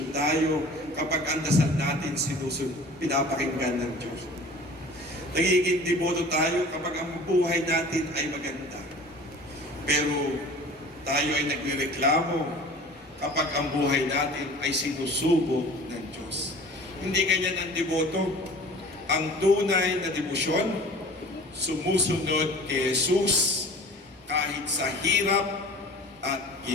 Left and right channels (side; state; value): both; normal; correlation 0.44